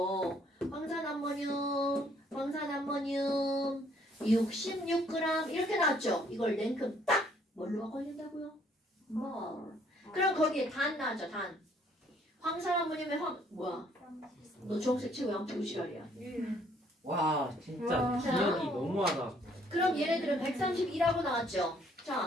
황산암모늄 66g 이렇게 나왔죠. 이걸 냉큼 딱 뭘로 바꿔야 된다고요? 뭘. 그럼 거기에 단 나왔죠. 단. 황산암모늄의 뭐야? 너 주황색 치고 양치고 지랄이야. 와, 진짜 와. 기억이 너무하다. 그럼 얘네들은 132라고 나왔죠.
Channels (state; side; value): normal; both; correlation 0.64